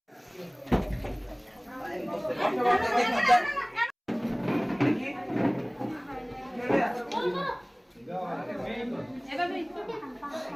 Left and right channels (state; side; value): identical; both; correlation 1.00